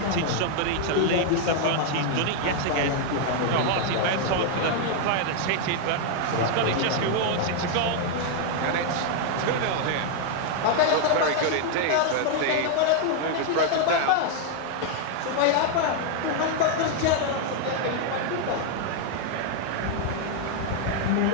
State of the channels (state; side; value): different; both; correlation 0.00